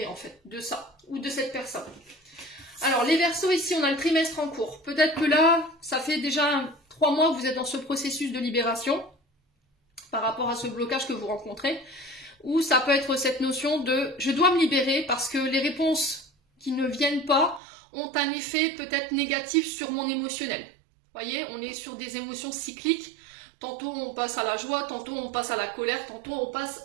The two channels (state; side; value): drops out; left; at 17.6 s